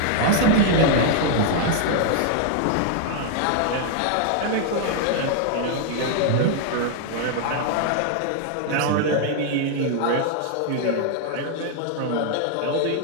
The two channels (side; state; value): both; different; correlation 0.00